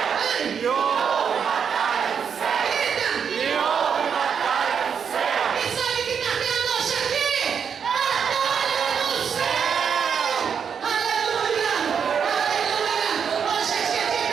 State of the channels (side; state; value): left; quieter; 7.0 dB